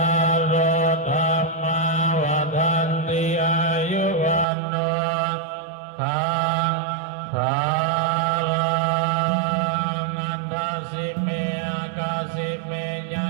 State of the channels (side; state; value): left; drops out; at 4.5 s